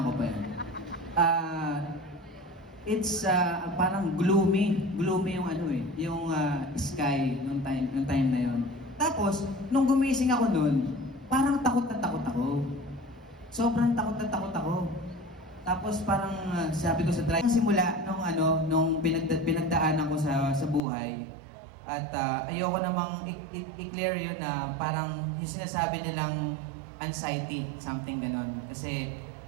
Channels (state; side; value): drops out; left; at 20.8 s